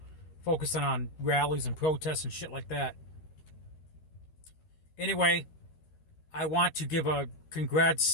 focusing on rallies and protests and shit like that. Anyway, I want to give a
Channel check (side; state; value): right; late; 13 ms